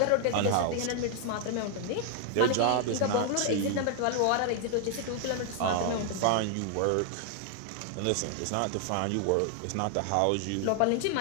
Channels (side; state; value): both; different; correlation 0.00